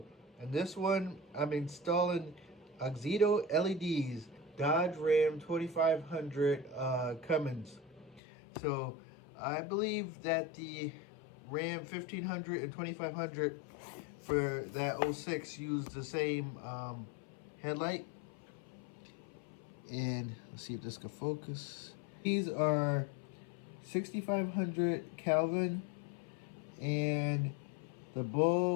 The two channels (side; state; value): right; drops out; at 8.2 s